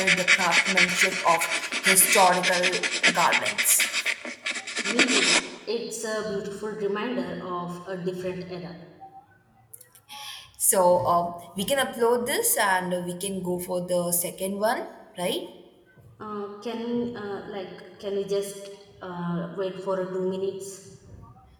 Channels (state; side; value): identical; both; correlation 1.00